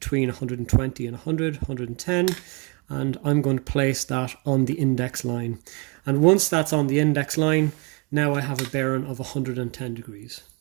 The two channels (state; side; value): quieter; left; 32.3 dB